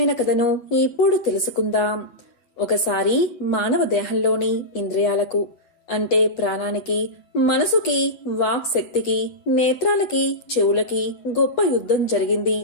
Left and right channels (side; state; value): right; late; 8.9 ms